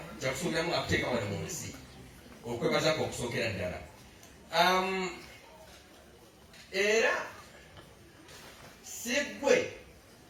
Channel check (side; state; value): both; identical; correlation 1.00